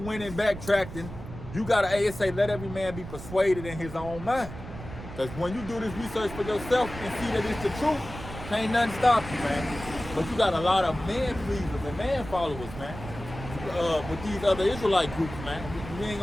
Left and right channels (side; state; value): right; noise; rumble, 11 dB below the sound